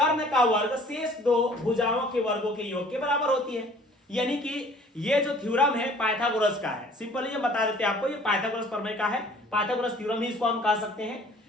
का वर्ग शेष 2 भुजाओं के वर्गों के योग के बराबर होती है। यानी कि ये जो थ्योरम है पाइथागोरस का है, सिंपली ये बता देते हैं आपको, ये पाइथागोरस प्रमेय का है, पाइथागोरस थ्योरम ही इसको हम कह सकते हैं।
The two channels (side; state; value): both; normal; correlation 0.53